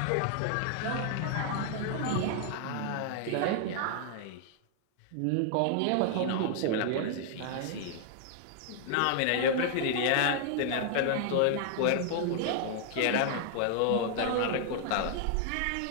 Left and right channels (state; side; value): different; both; correlation 0.00